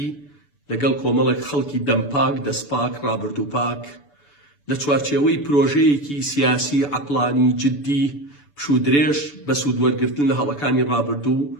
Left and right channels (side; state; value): right; late; 6.9 ms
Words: لەگەڵ کۆمەڵێک خەڵکی دەمپاک دەستپاک ڕابردووپاک لە چوارچێوەی پرۆژەیەکی سیاسی عەقڵانی جددی پشودرێژ بە سوودوەرگرتن لە هەڵەکانی ڕابردوو